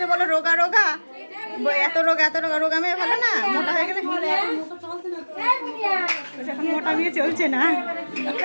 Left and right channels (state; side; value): inverted; both; correlation -1.00